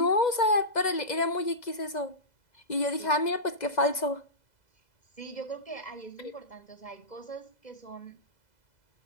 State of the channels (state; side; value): late; right; 2.0 ms